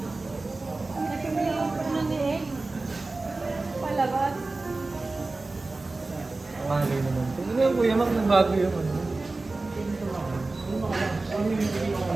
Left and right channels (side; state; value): left; quieter; 3.3 dB